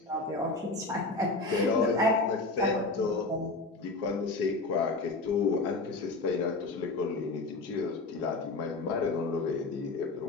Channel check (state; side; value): quieter; right; 3.3 dB